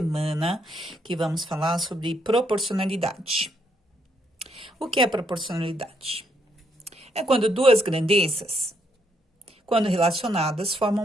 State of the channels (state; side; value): normal; both; correlation 0.74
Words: que vamos falar sobre proporcionalidade. O que é proporcionalidade? É quando duas grandezas, quando relacionadas,